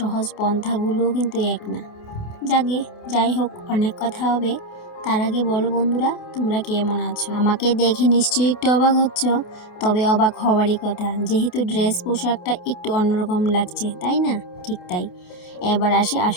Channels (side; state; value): right; late; 28 ms